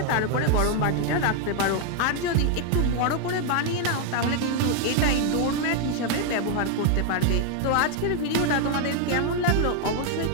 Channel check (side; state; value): both; different; correlation 0.00